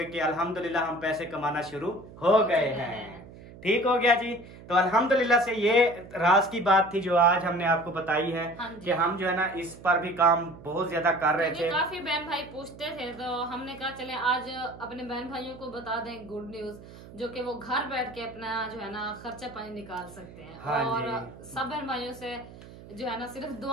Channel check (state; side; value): noise; right; hum, 17 dB below the sound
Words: कि अल्हम्दुलिल्लाह हम पैसे कमाना शुरू हो गए हैं। ठीक हो गया जी। तो अल्हम्दुलिल्लाह से ये राज की बात थी जो आज हमने आपको बताई है कि हम जो है ना इस पर भी काम बहुत ज्यादा कर रहे थे। काफी बहन भाई पूछते थे तो हमने कहा चले आज अपने बहन भाइयों को बता दें गुड न्यूज, जो कि वो घर बैठ के अपना जो है ना खर्चा पानी निकाल सकते हैं। हाँ और सब बहन भाइयों से जो है ना सिर्फ